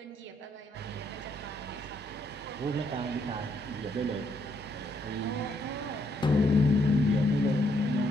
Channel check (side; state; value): both; normal; correlation 0.73